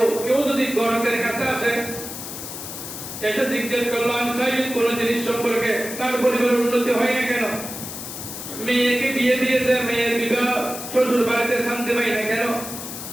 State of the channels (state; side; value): noise; left; hiss, 9 dB below the sound